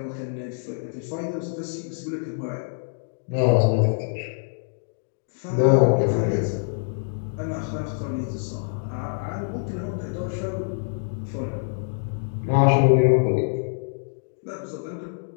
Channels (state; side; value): silent; right; digital silence